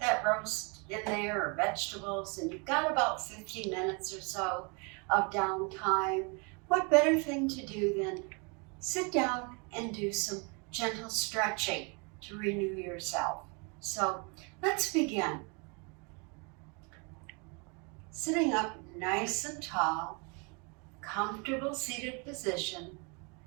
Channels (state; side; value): quieter; left; 32.7 dB